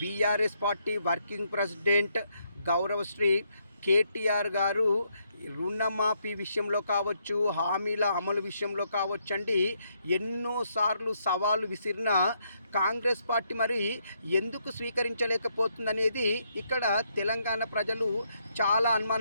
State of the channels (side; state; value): both; inverted; correlation -0.75